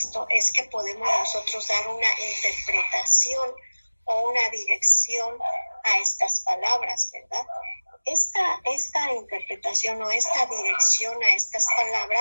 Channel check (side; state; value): both; inverted; correlation -1.00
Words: es que podemos nosotros dar una interpretación o una dirección a estas palabras, ¿verdad? Esta interpretación o esta dirección a estas